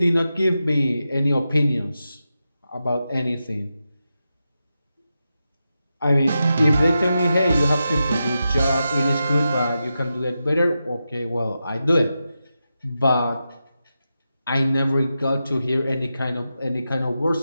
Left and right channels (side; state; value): both; inverted; correlation -0.90